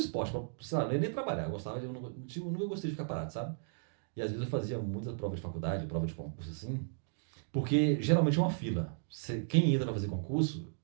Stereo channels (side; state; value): left; silent; digital silence